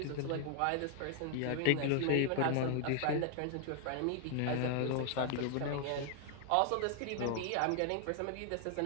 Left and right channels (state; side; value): different; both; correlation 0.00